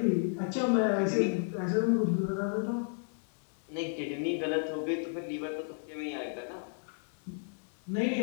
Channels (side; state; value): right; silent; 56 dB below the other